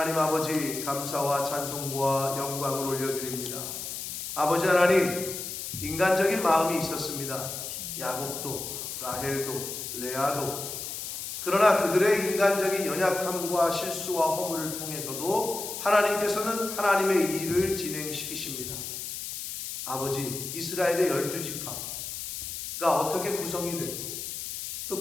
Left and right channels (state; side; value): noise; left; hiss, 6 dB below the sound